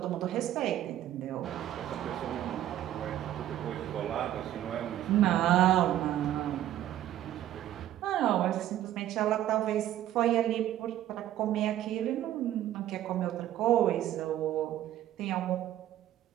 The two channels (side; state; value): left; quieter; 12.5 dB